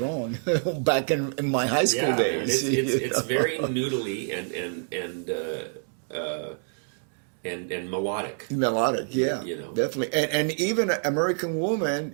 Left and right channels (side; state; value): left; silent; 60 dB below the other